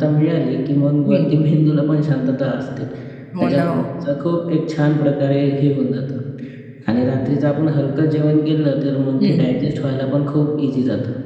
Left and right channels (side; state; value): both; identical; correlation 1.00